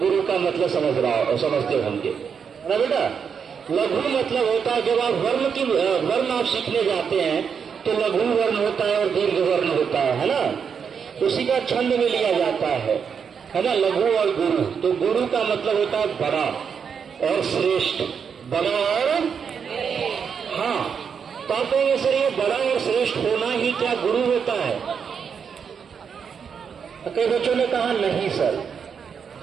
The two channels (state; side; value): quieter; left; 6.7 dB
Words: का मतलब समझते होंगे ना बेटा। लघु मतलब होता है जब आप वर्ण आप सीखने जाते हैं तो लघु वर्ण होता है और दीर्घ वर्ण होता है ना। उसी का छंद में लिया जाता है ना, लघु और गुरु। तो गुरु का मतलब होता है बड़ा और श्रेष्ठ, बड़ा और हाँ। तो आप कहेंगे सर ये बड़ा और श्रेष्ठ होना ही क्या गुरु होता है? कई बच्चों ने कहा नहीं सर,